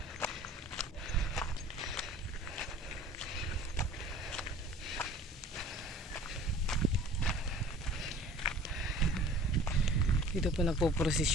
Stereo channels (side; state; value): both; normal; correlation 0.46